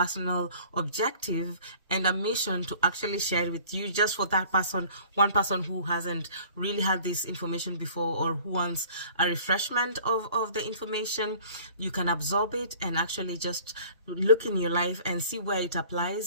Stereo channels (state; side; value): inverted; both; correlation -0.50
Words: objective and a mission to actually share it with you, just for that person, one person who hasn't really had this information before or who wants a refreshment of the information. You can absorb it and actually just look in your life and see where it